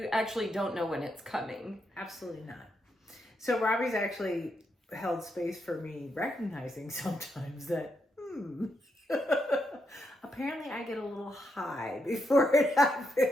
actually don't know when it's coming. Absolutely not. So Robbie's actually held space for me recognizing sometimes that, apparently I get a little high before it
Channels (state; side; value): normal; both; correlation 0.81